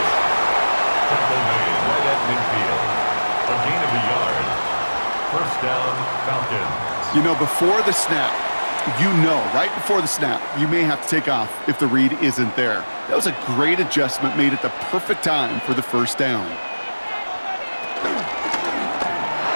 Tackle made right at midfield. A gain of a yard. First down, Falcons. You know, before the snap, right before the snap, you may have to take off if the read isn't there. That was a great adjustment made at the perfect time for the 1st down.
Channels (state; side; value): inverted; both; correlation -1.00